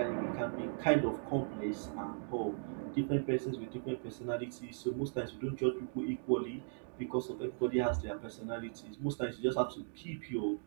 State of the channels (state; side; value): silent; left; digital silence